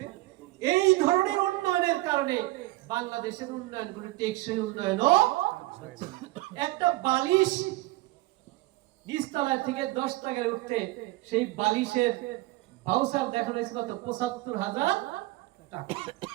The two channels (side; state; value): left; quieter; 19.4 dB